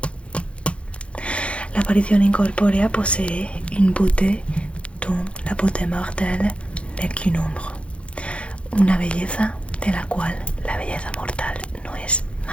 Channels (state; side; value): late; right; 0.060 ms